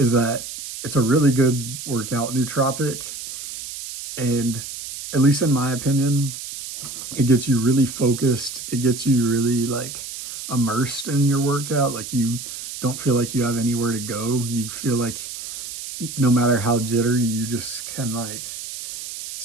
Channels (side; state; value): right; noise; hiss, 9 dB below the sound